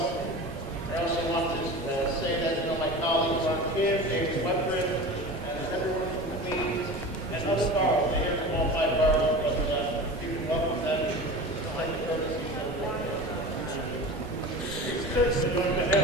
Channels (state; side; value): normal; both; correlation 0.33